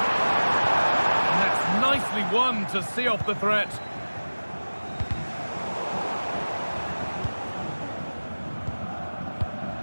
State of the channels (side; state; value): both; inverted; correlation -1.00